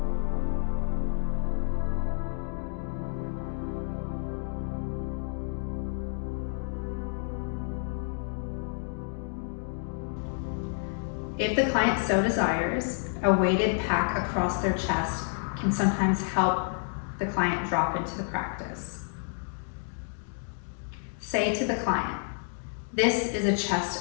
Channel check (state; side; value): silent; right; 58 dB below the other